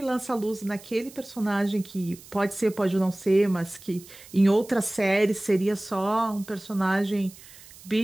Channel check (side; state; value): right; noise; hiss, 20 dB below the sound